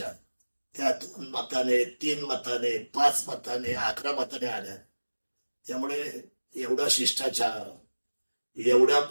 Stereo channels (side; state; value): both; inverted; correlation -1.00